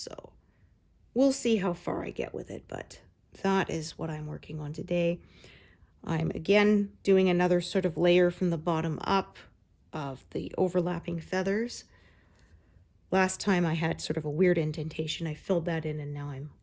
we'll see how far I get with it, but that is what I'm working on today. I'm again doing another sort of layer from the bottom up of the overlapping feathers. Last time I had sort of a weird indentation. I filled that in, and now I'm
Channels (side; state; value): both; identical; correlation 1.00